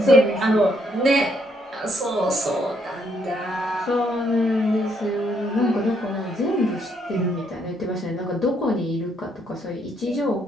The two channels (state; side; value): normal; both; correlation 0.72